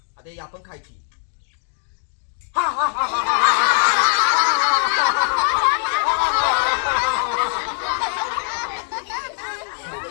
आता ही आपण खायची.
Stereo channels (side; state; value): right; silent; 65 dB below the other